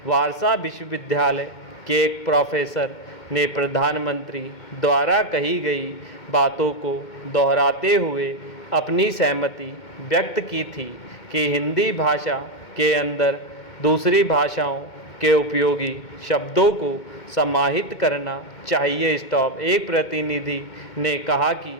वारसा विश्वविद्यालय के एक प्रोफेसर ने प्रधानमंत्री द्वारा कही गई बातों को दोहराते हुए अपनी सहमति व्यक्त की थी कि हिंदी भाषा के अंदर दूसरी भाषाओं के उपयोगी शब्दों को समाहित करना चाहिए। एक प्रतिनिधि ने कहा कि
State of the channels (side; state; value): right; late; 2.2 ms